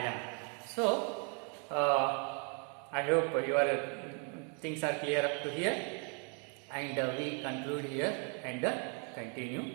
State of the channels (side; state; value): left; quieter; 38.4 dB